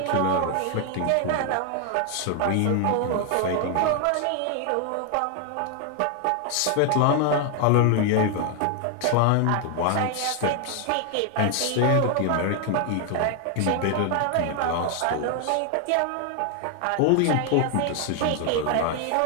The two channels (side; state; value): both; different; correlation 0.00